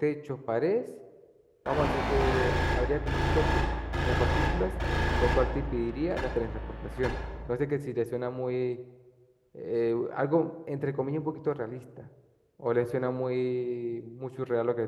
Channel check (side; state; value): both; identical; correlation 1.00